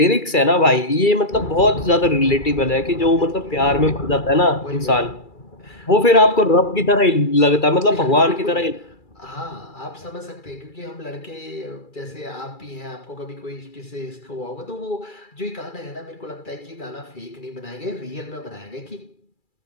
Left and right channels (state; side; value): late; right; 2.3 ms